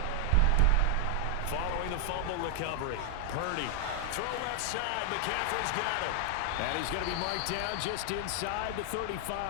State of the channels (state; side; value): different; both; correlation 0.00